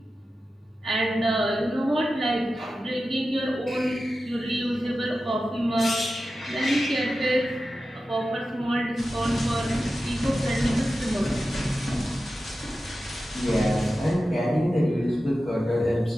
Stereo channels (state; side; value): normal; both; correlation 0.93